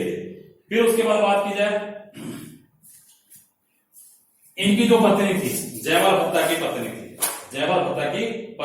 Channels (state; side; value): identical; both; correlation 1.00